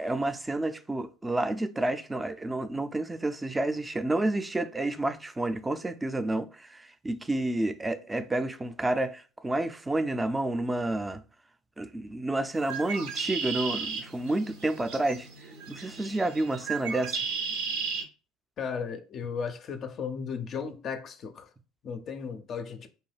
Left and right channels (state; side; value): normal; both; correlation 0.85